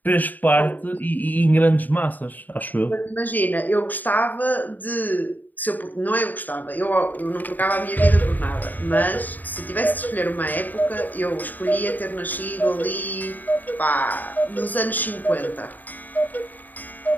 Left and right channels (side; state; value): right; late; 0.085 ms